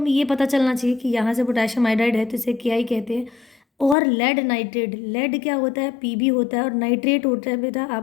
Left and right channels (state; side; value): drops out; right; at 4.0 s